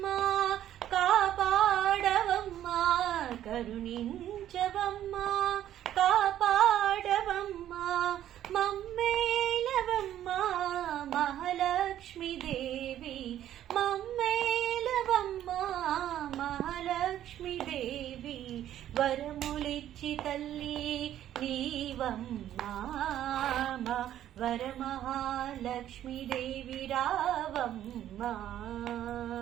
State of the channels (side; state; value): left; quieter; 11.7 dB